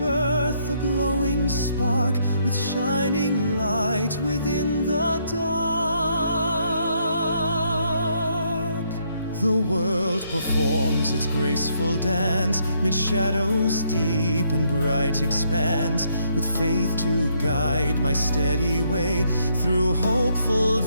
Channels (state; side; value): inverted; both; correlation -0.72